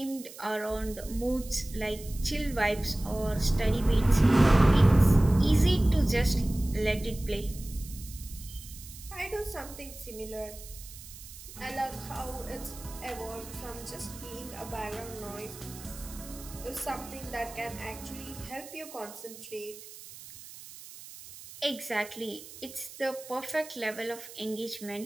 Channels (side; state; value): right; noise; hiss, 16 dB below the sound